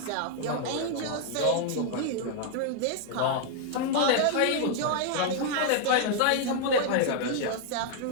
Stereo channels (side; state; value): both; different; correlation 0.00